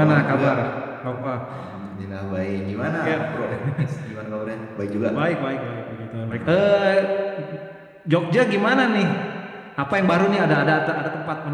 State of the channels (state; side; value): identical; both; correlation 1.00